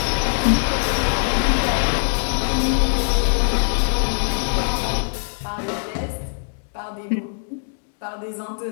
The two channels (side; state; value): right; silent; 61 dB below the other